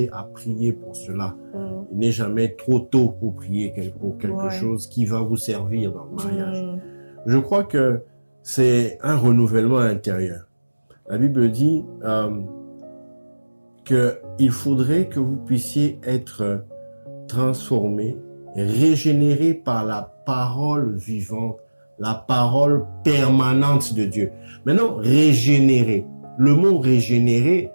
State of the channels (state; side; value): inverted; both; correlation -1.00